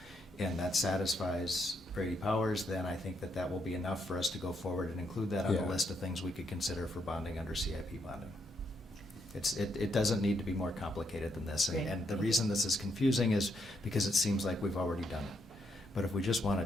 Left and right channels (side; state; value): both; normal; correlation 0.77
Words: and that satisfies Brady Powers, then I think that will be enough for us to go forward and include that on the Yeah. list of things we could consider for bonding under CIP bonding. It doesn't need to be more complicated than this, Great. and the reason this is confusing is because it seems like we've already done it. But if we just want to